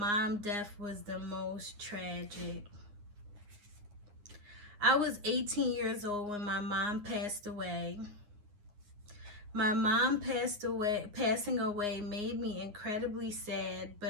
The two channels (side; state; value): left; late; 9.7 ms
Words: death was the most tragic. I was 18 years old when my mom passed away. My mom passing away made me incredibly sad,